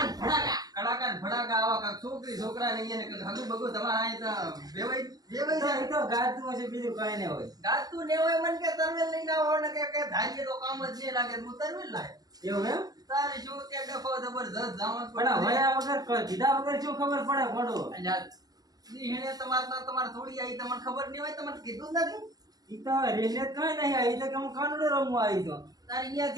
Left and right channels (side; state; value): left; late; 0.19 ms